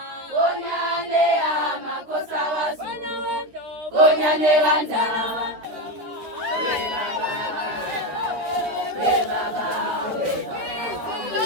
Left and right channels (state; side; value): late; left; 13 ms